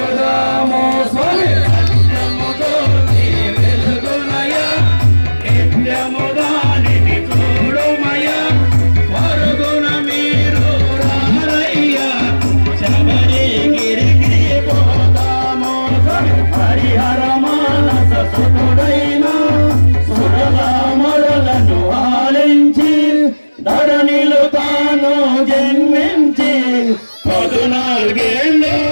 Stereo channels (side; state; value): both; inverted; correlation -1.00